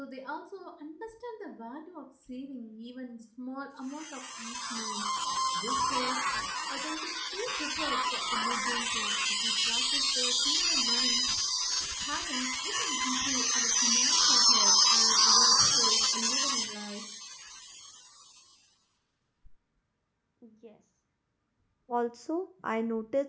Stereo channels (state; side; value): identical; both; correlation 1.00